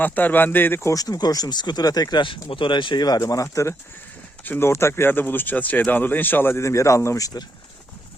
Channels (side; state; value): both; normal; correlation 0.79